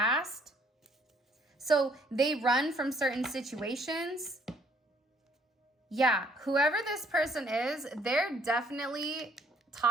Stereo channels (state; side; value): normal; both; correlation 0.64